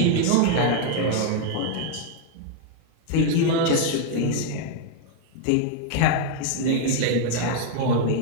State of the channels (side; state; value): both; different; correlation 0.00